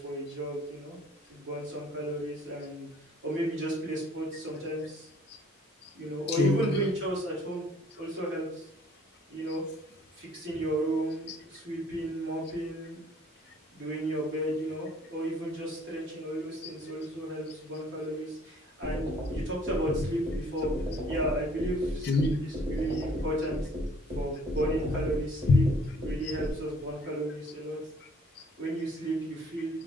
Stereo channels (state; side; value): normal; both; correlation 0.59